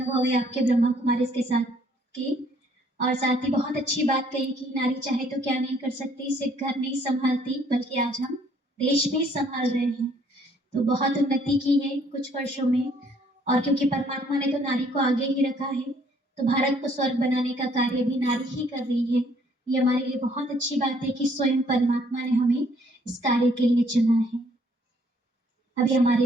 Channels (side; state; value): both; normal; correlation 0.64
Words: है आपके ब्रह्मा कुमारी के साथ की। और साथ ही बहुत अच्छी बात कही कि नारी चाहे तो क्या नहीं कर सकती, सिर्फ घर नहीं संभालती बल्कि आज हम देश भी संभाल रहे हैं। तो बहुत उन्नति की है कुछ वर्षों में, और क्योंकि परमात्मा ने तो नारी को आगे ही रखा है, तो भारत को स्वर्ग बनाने का कार्य भी नारी ही कर रही है। ये हमारे लिए बहुत अच्छी बात है कि स्वयं परमात्मा ने हमें इस कार्य के लिए चुना है। अभी